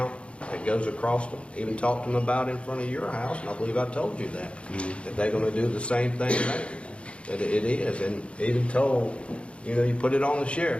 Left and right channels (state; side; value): late; right; 0.060 ms